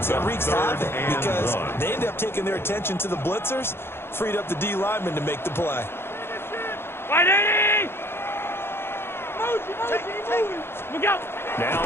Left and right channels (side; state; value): right; late; 0.11 ms